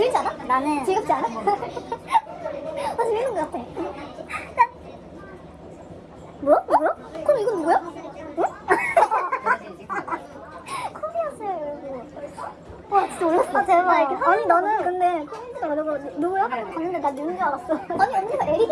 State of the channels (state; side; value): identical; both; correlation 1.00